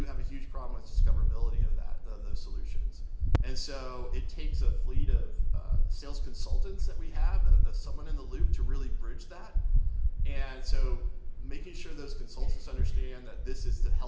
have a huge problem with discoverability of those solutions. And so it takes a fleet of sales consultants that we have, someone in the loop to really bridge that. And so making sure those consultants understand that this is to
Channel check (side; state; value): both; identical; correlation 1.00